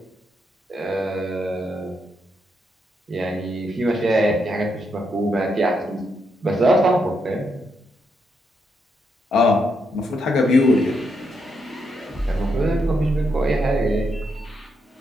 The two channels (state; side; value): normal; both; correlation 0.80